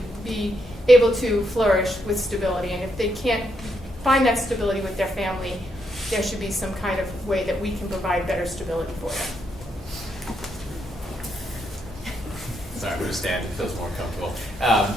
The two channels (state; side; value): normal; both; correlation 0.78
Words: be able to flourish with stability. And if they can't find that stability with their family, there should be some kind of way that we can provide better stability for them. Sorry, I'm going to stand. It feels more comfortable.